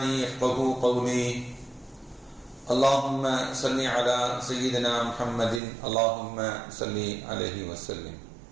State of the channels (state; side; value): drops out; left; at 5.6 s